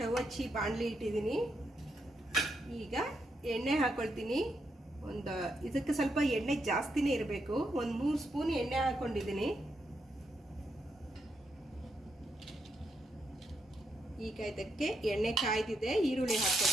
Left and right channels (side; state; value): both; normal; correlation 0.80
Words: ಹಚ್ಚಿ ಬಾಣಲಿ ಇಟ್ಟಿದ್ದೀನಿ. ಈಗ ಎಣ್ಣೆ ಹಾಕ್ಕೊಳ್ತೀನಿ. ಇದಕ್ಕೆ ಸ್ವಲ್ಪ ಎಣ್ಣೆ ಜಾಸ್ತಿನೇ ಇರಬೇಕು. ಒಂದು 3 ಸ್ಪೂನ್ ಎಣ್ಣೆ ಹಾಕ್ಕೊಂಡಿದ್ದೀನಿ. ಈಗ ಇದಕ್ಕೆ ಎಣ್ಣೆ ಕಾಯ್ದಿದೆ, ಈರುಳ್ಳಿ